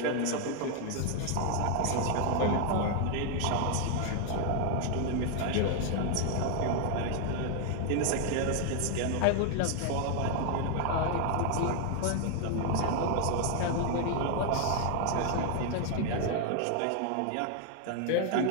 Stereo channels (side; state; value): both; different; correlation 0.00